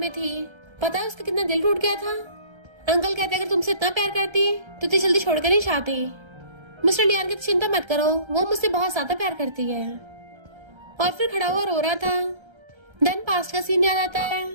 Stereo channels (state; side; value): late; left; 1.3 ms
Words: थी, पता है उसका कितना दिल टूट गया था। अंकल कहते अगर तुमसे इतना प्यार करती तो इतनी जल्दी छोड़कर नहीं चाहती। मिस्टर लियान कहते चिंता मत करो, वो मुझसे बहुत ज्यादा प्यार करती है। और फिर खड़ा हुआ रो रहा था। देन पास्ट का सीन याद आता है।